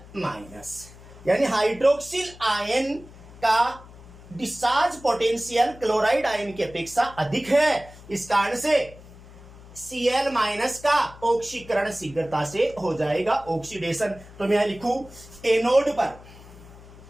माइनस, यानी हाइड्रोक्सिल आयन का डिस्चार्ज पोटेंशियल क्लोराइड आयन की अपेक्षा अधिक है। इस कारण से Cl माइनस का ऑक्सीकरण शीघ्रता से हो जाएगा, ऑक्सीडेशन। तो मैं यहां लिखूं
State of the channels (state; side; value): noise; left; hum, 19 dB below the sound